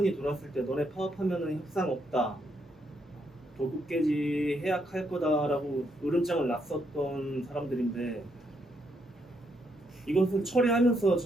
돌았을 때 너네 파업하면은 협상 없다. 도급계지 해약할 거다라고 으름장을 놨었던 사람들인데 이것을 처리하면서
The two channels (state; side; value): normal; both; correlation 0.76